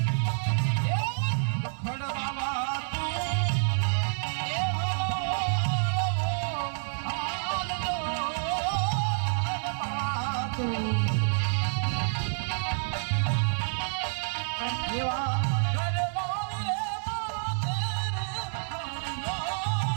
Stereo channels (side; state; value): left; silent; 59 dB below the other